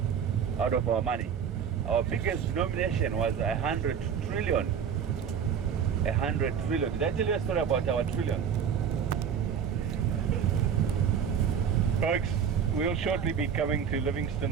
out of our money. Our biggest denomination was 100 trillion. 100 trillion. Did I tell you a story about our trillion? Folks, we'll shortly be coming to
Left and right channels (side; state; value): left; quieter; 7.7 dB